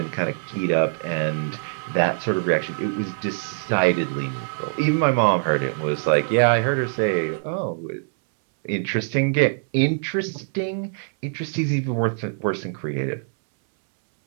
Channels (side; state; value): left; silent; 63 dB below the other